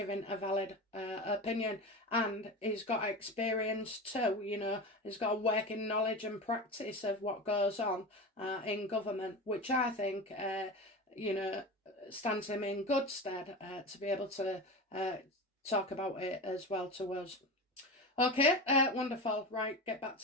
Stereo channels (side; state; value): both; normal; correlation 0.26